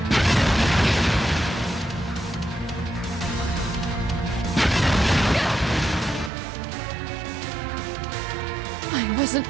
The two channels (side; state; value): left; drops out; at 6.3 s